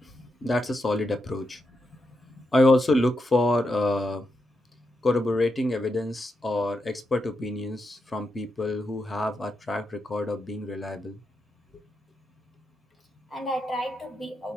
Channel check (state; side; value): normal; both; correlation 0.85